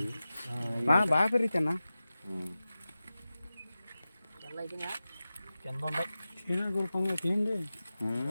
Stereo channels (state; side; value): inverted; both; correlation -0.95